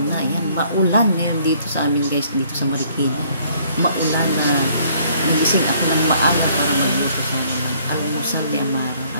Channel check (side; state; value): both; inverted; correlation -0.62